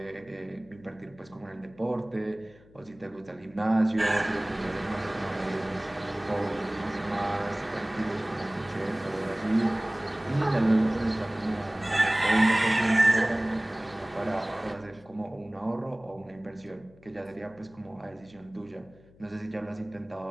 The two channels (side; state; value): left; noise; hum, 25 dB below the sound